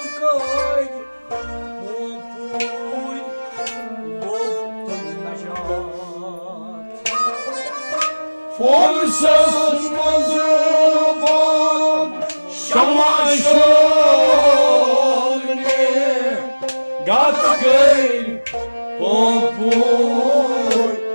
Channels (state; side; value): inverted; both; correlation -1.00